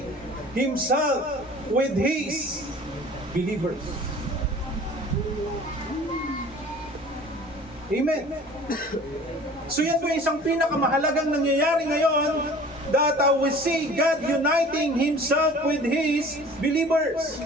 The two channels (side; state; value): both; normal; correlation 0.46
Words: Himself with His believers. Amen. So yan po isang pinakamahalagang nangyayari ngayon, that we see God uniting Himself with His believers.